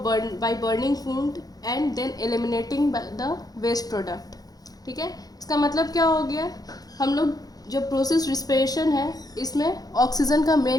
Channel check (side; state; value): right; late; 0.18 ms